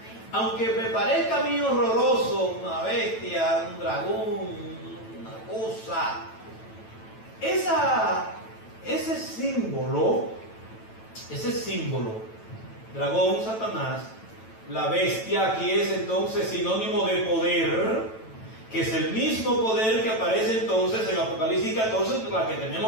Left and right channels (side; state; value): right; late; 9.1 ms